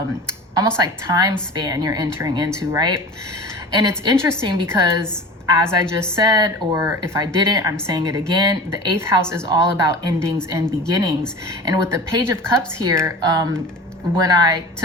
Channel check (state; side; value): normal; both; correlation 0.35